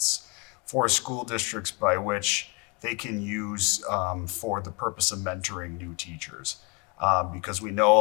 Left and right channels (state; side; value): quieter; right; 31.0 dB